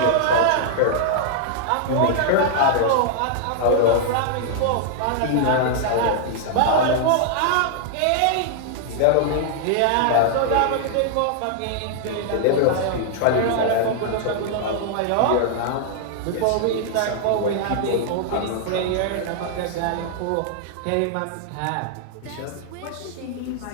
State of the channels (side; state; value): both; different; correlation -0.01